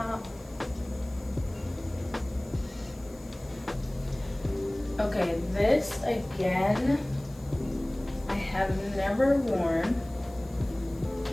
Okay, this again, I have never worn,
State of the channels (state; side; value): noise; left; hiss, 25 dB below the sound